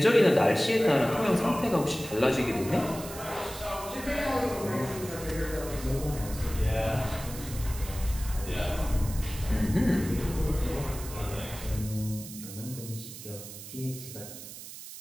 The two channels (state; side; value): noise; right; hiss, 12 dB below the sound